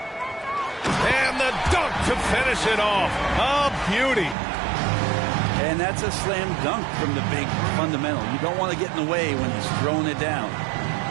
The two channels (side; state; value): left; drops out; at 4.4 s